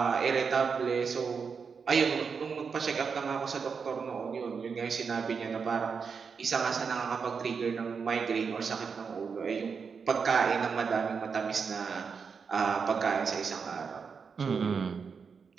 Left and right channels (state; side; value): quieter; left; 5.8 dB